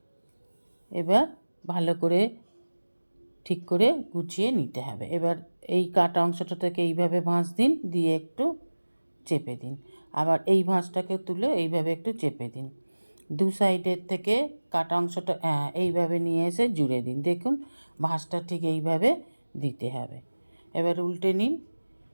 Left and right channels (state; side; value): inverted; both; correlation -1.00